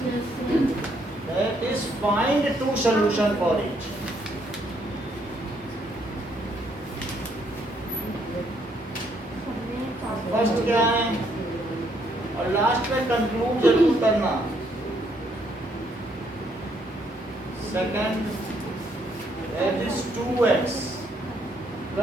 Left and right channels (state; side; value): normal; both; correlation 0.71